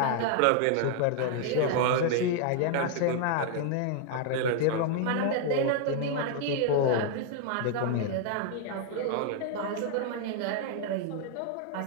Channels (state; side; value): different; both; correlation 0.00